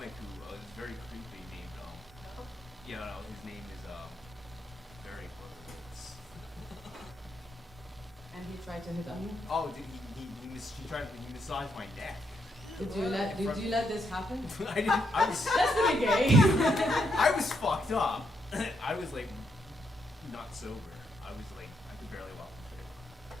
who is very creepy named his name is very And he tried to hit on you? oh, he massaged my neck. Did you let this happen? I didn't. I was That's pretty gay. I was fucked up. I was like not sober. I was like I could barely walk the street.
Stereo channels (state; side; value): normal; both; correlation 0.78